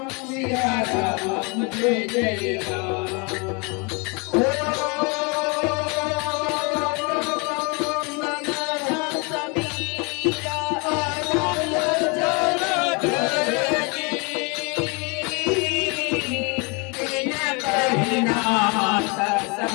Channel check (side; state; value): right; quieter; 31.1 dB